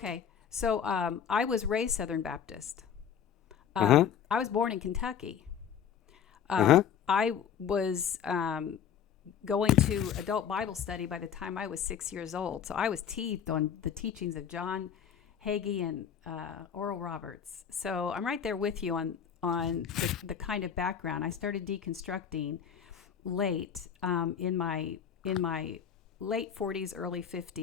So I was raised Southern Baptist. Uh-huh. I was born in Kentucky. Uh-huh. I was going to adult Bible study by the time I was 6 years old. So I was teethed on the teachings of John Hagee and Oral Roberts. So I'm right there with you on the kind of background. I started deconstructing late in my late 40s, early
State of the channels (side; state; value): right; quieter; 8.3 dB